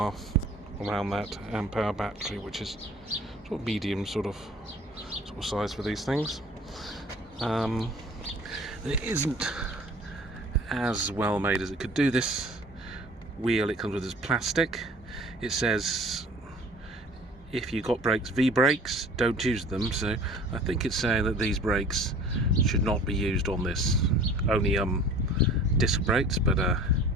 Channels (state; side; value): normal; both; correlation 0.47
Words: around that amp hour battery, which is sort of medium sort of size for these things. It isn't as well made as it could do. This wheel it comes with is plastic. It says if you got brakes, V brakes, don't use them, so I think it's saying that these brakes should not be used on this, only disc brakes, but